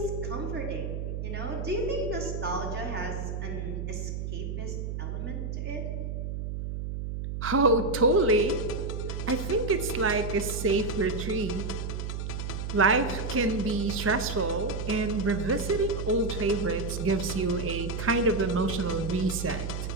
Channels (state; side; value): noise; right; hum, 4 dB below the sound